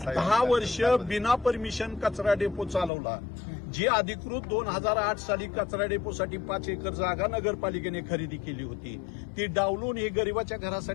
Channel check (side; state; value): right; drops out; at 2.9 s